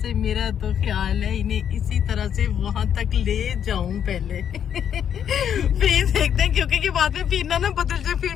मेरा तो ख्याल है इन्हें इसी तरह से वहां तक ले जाऊं पहले। फिर देखते हैं, क्योंकि कि बाद में फिर ना बदल जाए,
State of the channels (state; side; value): quieter; right; 8.8 dB